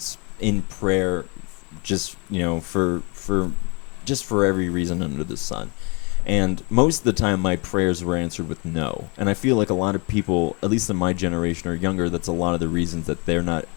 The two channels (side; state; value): right; quieter; 31.8 dB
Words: in prayer, just for every reason under the sun, and most of the time my prayers were answered with no. And I feel like a lot of people, at least in my generation or younger, that's a lot of the reasons that they're not